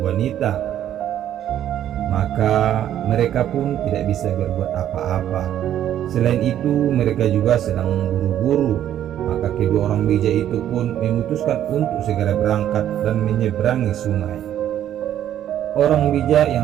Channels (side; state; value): left; quieter; 11.1 dB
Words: wanita. Maka mereka pun tidak bisa berbuat apa-apa. Selain itu, mereka juga sedang buru-buru. Maka kedua orang bijak itu pun memutuskan untuk segera berangkat dan menyeberangi sungai. Orang bijak